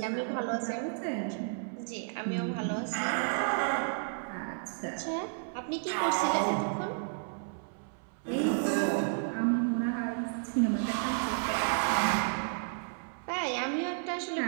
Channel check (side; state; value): left; silent; 56 dB below the other